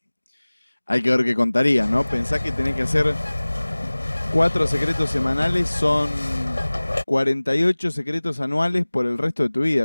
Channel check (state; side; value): inverted; both; correlation -1.00